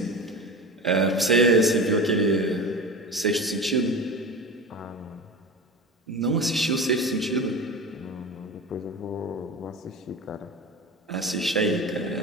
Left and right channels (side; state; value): both; normal; correlation 0.30